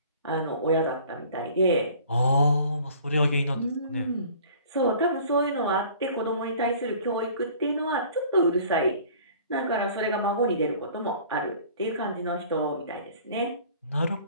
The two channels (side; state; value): both; inverted; correlation -0.49